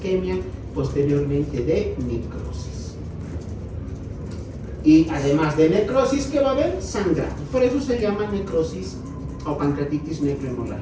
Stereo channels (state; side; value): identical; both; correlation 1.00